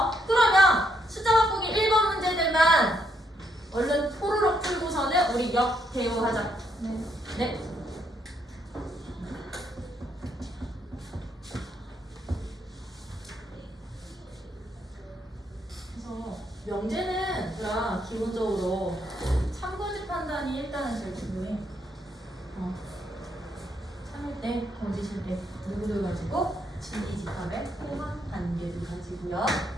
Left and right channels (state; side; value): normal; both; correlation 0.75